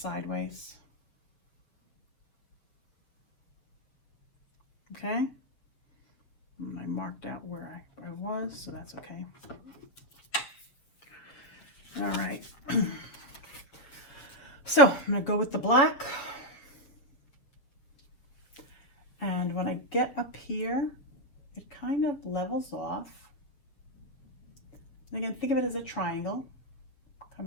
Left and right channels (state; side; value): late; right; 7.4 ms